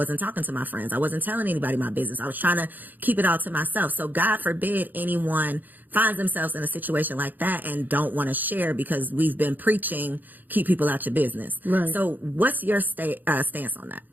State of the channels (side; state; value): left; late; 0.086 ms